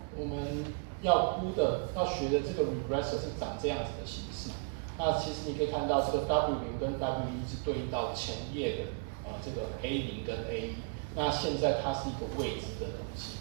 我们要学的这个 regressor 是长这样子的形式。那其实你可以看到这个 W0 跟 W1 是对应到前页的这个 A0 跟 A1。那现在它是一个未知的东西，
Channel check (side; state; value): left; quieter; 32.9 dB